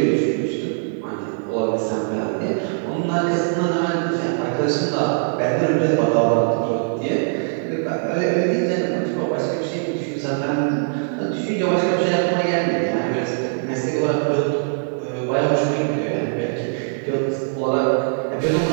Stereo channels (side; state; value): left; silent; 65 dB below the other